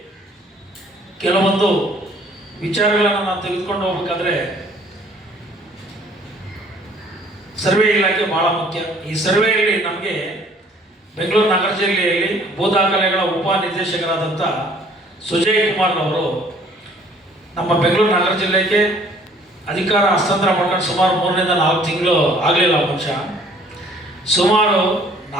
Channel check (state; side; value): normal; both; correlation 0.57